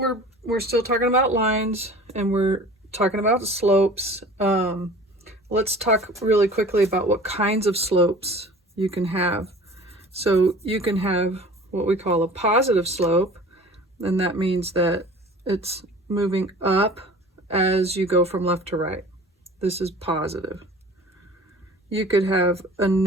we're still talking about lines and we're talking about slopes. Let's talk really quickly about what kinds of slopes you can have. So you can have what we call a positive slope, and that means that it's moving up as you go from left to right. This is positive. You could have a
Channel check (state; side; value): normal; both; correlation 0.43